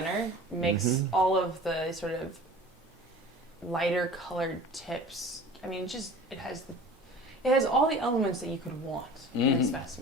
makes Mhm. all of the sort of lighter colored tips. I mean, it has all the elements that you could want in a Mhm.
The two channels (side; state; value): both; normal; correlation 0.41